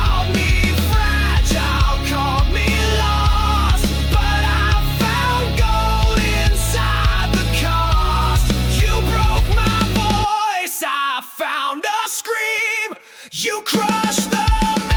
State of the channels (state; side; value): identical; both; correlation 1.00